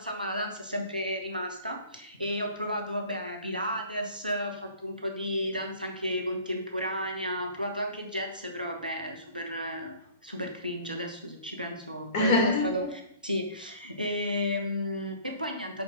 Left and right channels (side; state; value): both; inverted; correlation -0.49